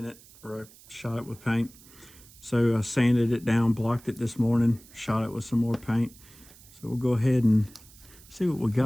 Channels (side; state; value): right; noise; hiss, 23 dB below the sound